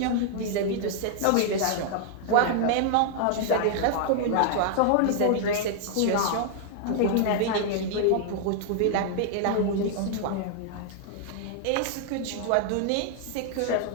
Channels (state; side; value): different; both; correlation 0.00